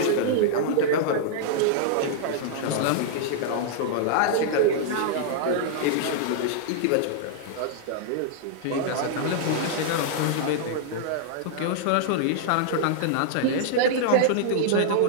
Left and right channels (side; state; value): both; different; correlation -0.01